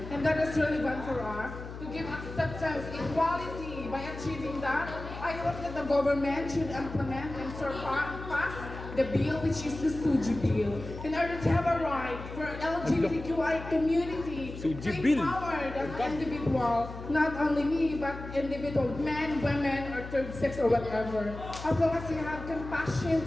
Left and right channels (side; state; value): left; noise; hum, 11 dB below the sound